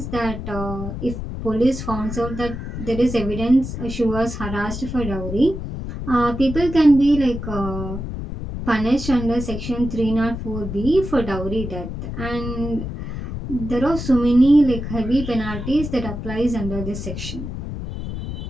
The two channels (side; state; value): left; noise; rumble, 7 dB below the sound